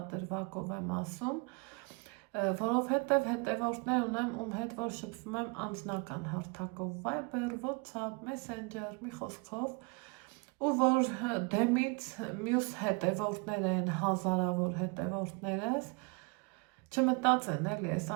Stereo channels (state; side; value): quieter; left; 31.3 dB